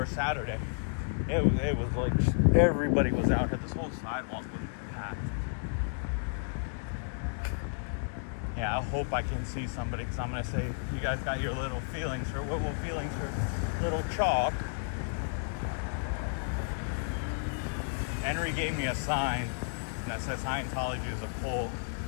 Saturday. It was like everybody was out here. This whole sidewalk was packed. Yeah, I hope I can see somebody, because I'm gonna say, you guys got your little feelings, or what will feelings for little chalk. Henry gave me a sign that says Scientology is a cult.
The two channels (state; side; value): silent; right; 56 dB below the other